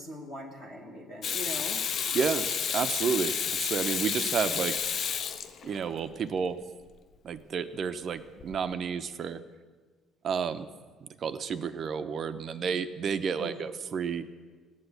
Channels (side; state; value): both; normal; correlation 0.69